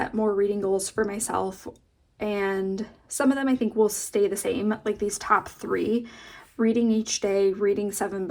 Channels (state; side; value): identical; both; correlation 1.00